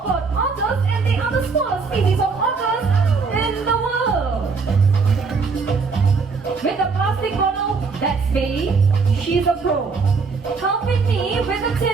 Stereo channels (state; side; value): quieter; left; 4.7 dB